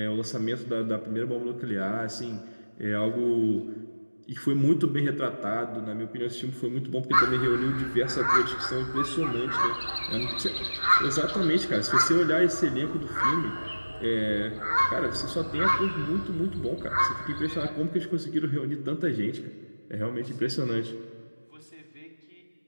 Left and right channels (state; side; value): inverted; both; correlation -1.00